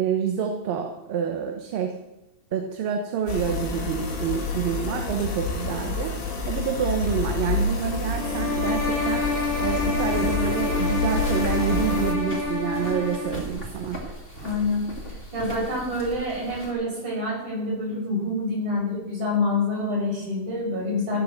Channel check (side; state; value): right; late; 2.7 ms